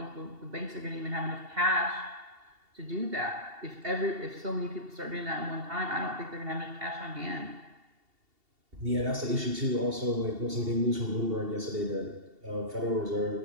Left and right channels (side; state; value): left; late; 2.7 ms